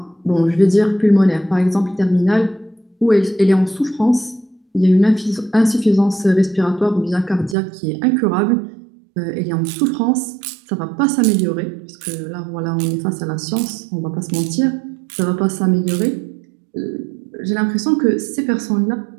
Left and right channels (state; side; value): drops out; left; at 7.6 s